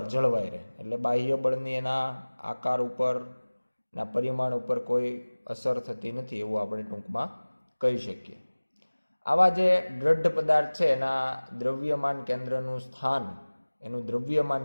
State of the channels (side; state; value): both; inverted; correlation -1.00